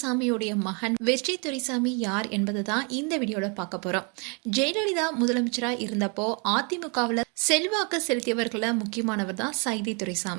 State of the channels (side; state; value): left; quieter; 34.8 dB